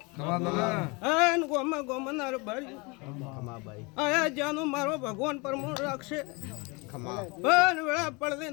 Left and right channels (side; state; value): right; quieter; 28.2 dB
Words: આન ગોમાં ગોમનાર બાર્યું આયા જાનું મારો ભગવાન પરમોણ રાખશે પણ વેળા પડદે